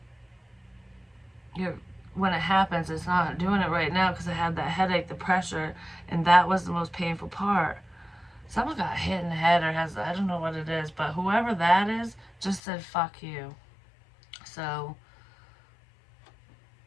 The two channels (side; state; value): right; drops out; at 12.6 s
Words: When it happens, it's not doing it right now because I had that headache, the pressure, and that was the most painful part. Someone got hit in the head, or I don't know what it is, but whoever that is just said fuck you. So